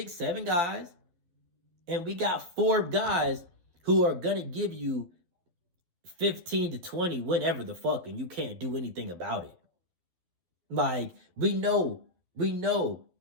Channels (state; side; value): late; left; 12 ms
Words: 7 guys. And we got 4 guys who are going to give you 15 to 20 whenever the fuck, and you can't do anything about it. Like, we know